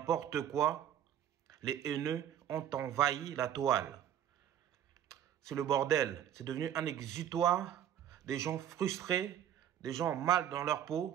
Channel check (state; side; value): quieter; left; 10.2 dB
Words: quoi, les haineux ont envahi la toile. C'est le bordel, c'est devenu un exutoire des gens frustrés, des gens mal dans leur